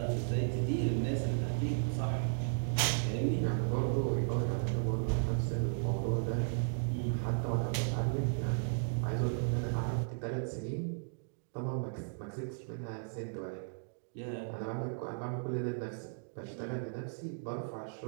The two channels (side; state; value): left; silent; digital silence